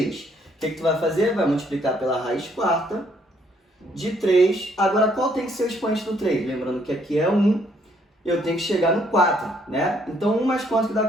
O que tu vai fazer? Vai multiplicar pela raiz quarta de 3. Agora, qual tem que ser o expoente do 3? Lembrando que aqui é 1, eu tenho que chegar no 4, né? Então, 1 mais quanto que dá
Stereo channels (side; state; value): both; normal; correlation 0.67